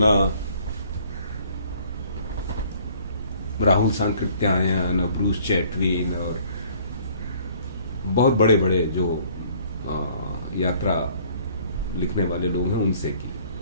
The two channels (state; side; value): inverted; both; correlation -0.58